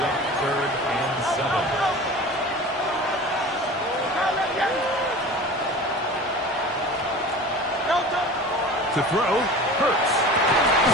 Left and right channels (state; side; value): normal; both; correlation 0.37